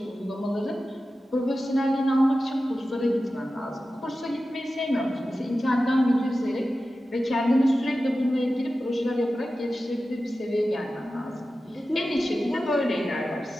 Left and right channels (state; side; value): normal; both; correlation 0.94